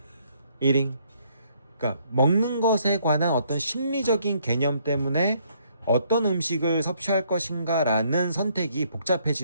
eating. 그러니까 먹는 것에 관한 어떤 심리적인 개념 때문에 어떤 음식을 섭취할 것인가라는 선택이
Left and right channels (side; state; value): both; inverted; correlation -0.67